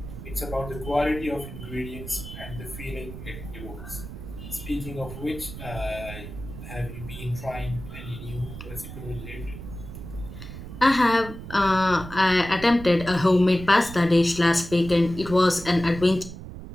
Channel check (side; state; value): right; noise; rumble, 11 dB below the sound